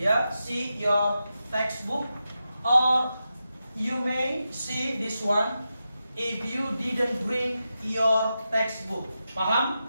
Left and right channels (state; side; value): inverted; both; correlation -0.90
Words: see your textbook, or you may see this one if you didn't bring your textbook.